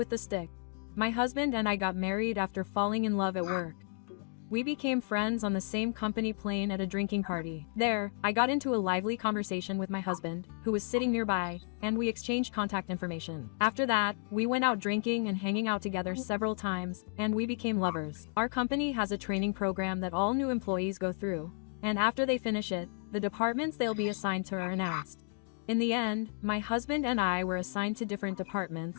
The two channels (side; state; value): right; silent; 56 dB below the other